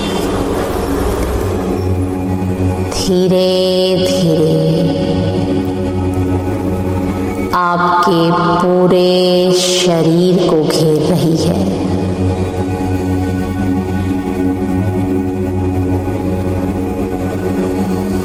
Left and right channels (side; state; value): both; identical; correlation 1.00